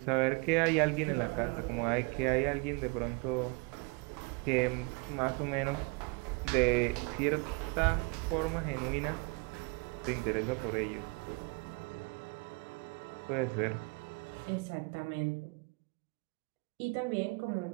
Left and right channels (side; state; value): left; quieter; 30.1 dB